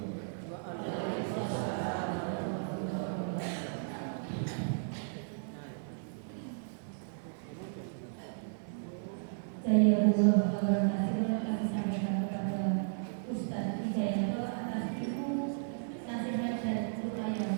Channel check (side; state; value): left; silent; digital silence